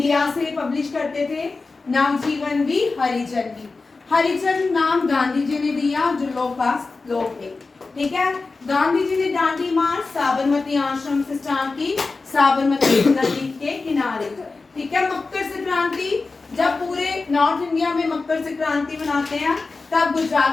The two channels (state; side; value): quieter; right; 3.9 dB